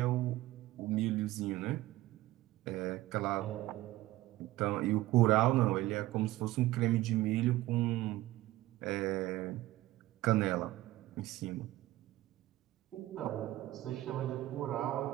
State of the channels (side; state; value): left; quieter; 16.7 dB